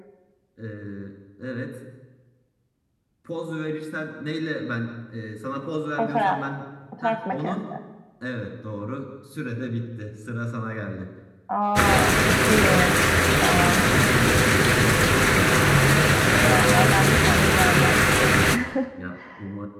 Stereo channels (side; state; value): both; identical; correlation 1.00